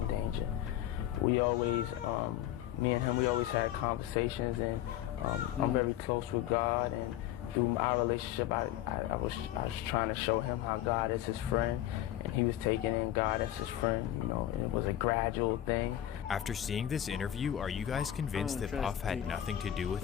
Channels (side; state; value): right; quieter; 12.5 dB